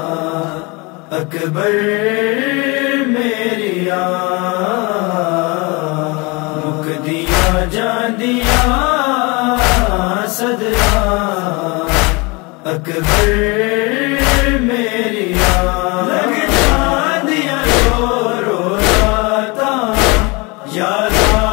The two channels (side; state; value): right; quieter; 27.6 dB